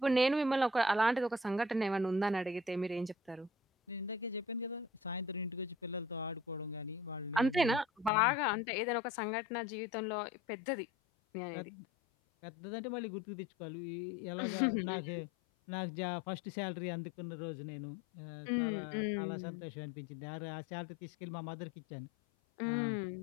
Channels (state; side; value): drops out; right; at 8.1 s